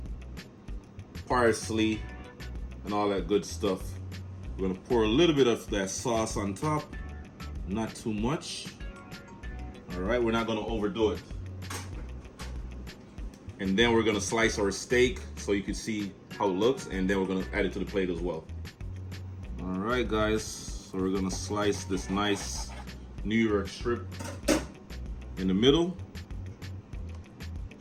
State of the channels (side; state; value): both; identical; correlation 1.00